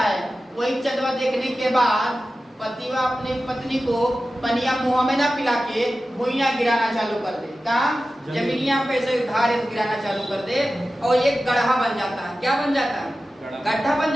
वही चंदवा देखने के बाद पतिवा अपनी पत्नी को पनिया मुंह में ना पिला के भुइया गिराना चालू कर दे। कहा? जमीनिया पे से धार गिराना चालू कर दे और एक गड्ढा बन जाता है। क्या बन जाता है? गड्ढा बन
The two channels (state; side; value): normal; both; correlation 0.94